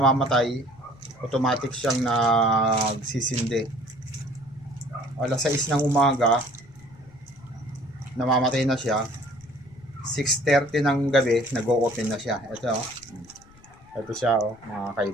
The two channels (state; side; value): noise; left; rumble, 25 dB below the sound